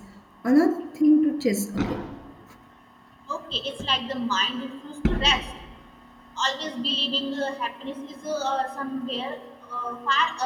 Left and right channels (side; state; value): both; identical; correlation 1.00